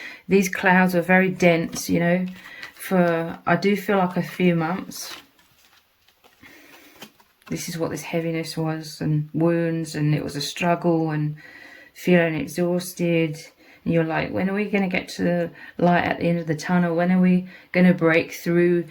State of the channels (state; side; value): identical; both; correlation 1.00